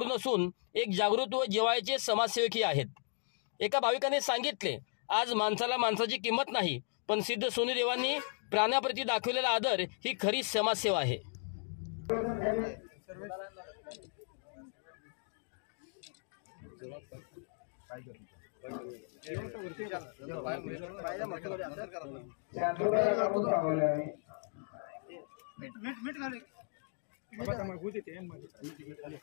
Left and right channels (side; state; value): right; silent; 54 dB below the other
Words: नसून एक जागृत व जिव्हाळ्याचे समाजसेवकही आहेत. एका भाविकाने सांगितले, आज माणसाला माणसाची किंमत नाही, पण सिद्ध सोनूदेवांनी प्राण्याप्रती दाखवलेला आदर ही खरी समाजसेवा आहे.